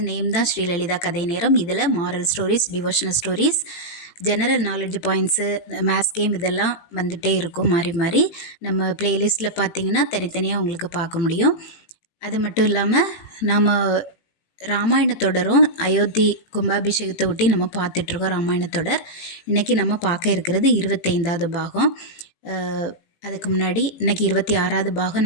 நேம் தான் ஸ்ரீலலிதா கதை நேரம். இதில் moral stories, devotional stories, general knowledge points, maths game இதெல்லாம் வந்துகிட்டே இருக்கும் மாறி மாறி. நம்ம ப்ளேலிஸ்ட்டில் பார்த்தீங்கன்னா தனித்தனியாக உங்களுக்கு பார்க்க முடியும். அது மட்டும் இல்லாமல் நாம் ராமாயணத்தொடரும் அயோத்தி கும்பாபிஷேகத்தை ஒட்டி நம்ம பார்த்துட்ருக்கோம். ராமாயணத்தொடர் இன்றைக்கி நம்ம பார்க்க இருக்கிறது 25வது பாகம். அதுக்கு முன்னாடி இன்றைக்கி 26வது பாகம்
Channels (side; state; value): right; late; 18 ms